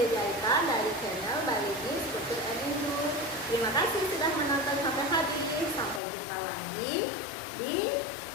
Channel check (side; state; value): right; drops out; at 6.0 s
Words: jahitan dari channel Baligis Putri Enindus. Terima kasih sudah menonton sampai habis. Sampai jumpa lagi di